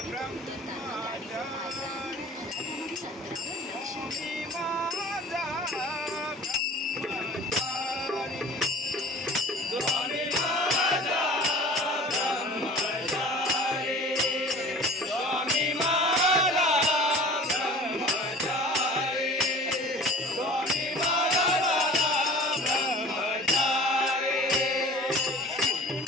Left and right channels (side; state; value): both; normal; correlation 0.43